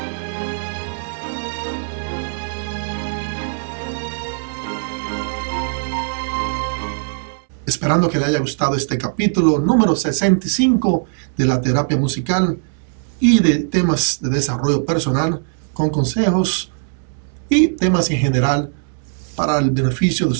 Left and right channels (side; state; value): left; silent; 66 dB below the other